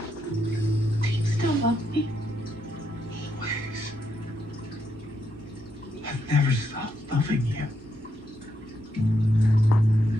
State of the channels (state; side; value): normal; both; correlation 0.79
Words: Do you still love me? Always. I've never stopped loving you.